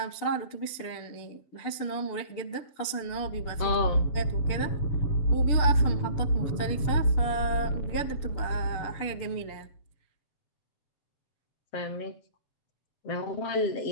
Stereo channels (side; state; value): right; late; 6.8 ms